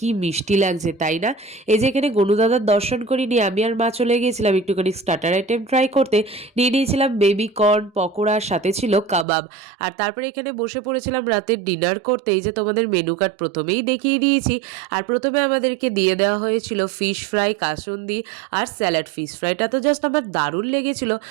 মিষ্টি লাগছে তাই না। এই যে এখানে গনুদাদার দর্শন করিনি, আমি আর মা চলে গিয়েছিলাম একটুখানি স্টার্টার আইটেম ট্রাই করতে। নিয়ে নিয়েছিলাম বেবি কর্ন পকোড়ার সাথে ছিল কাবাব। আর তারপরে এখানে বসে পড়েছিলাম রাতের ডিনার করতে। এই যে তোমাদের মেনু কার্ড প্রথমেই দেখিয়ে দিয়েছি। আর প্রথমে আমাদেরকে দিয়ে দেওয়া হয়েছিল ফিশ ফ্রাই, কাসুন্দি আর স্যালাড। ফিশ ফ্রাইটা তো জাস্ট আমার দারুণ লেগেছিল।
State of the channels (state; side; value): drops out; left; at 9.2 s